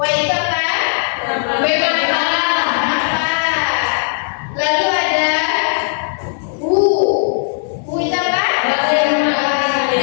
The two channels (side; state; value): right; silent; digital silence